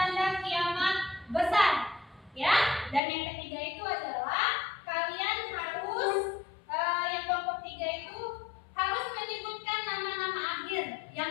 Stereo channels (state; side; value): drops out; right; at 3.0 s